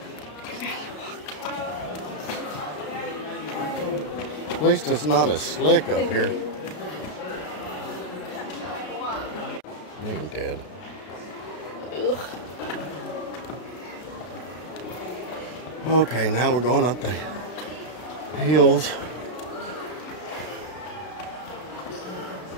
At least it's not as slick up here. They ain't dead. Ugh. Okay, now we're going up the hills.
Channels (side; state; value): right; late; 33 ms